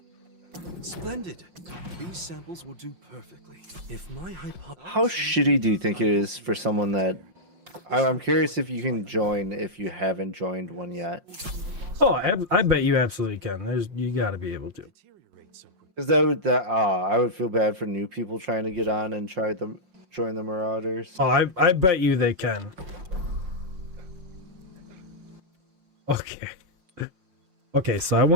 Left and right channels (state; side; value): late; left; 5.6 ms